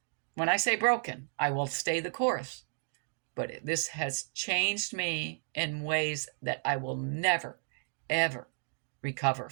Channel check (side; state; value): left; silent; digital silence